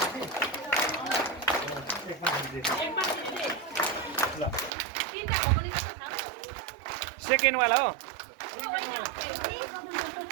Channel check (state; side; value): drops out; left; at 4.7 s